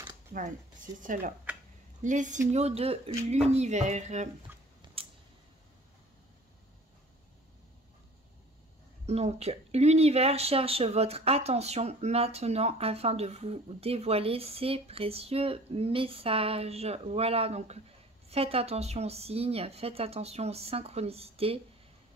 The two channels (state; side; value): normal; both; correlation 0.47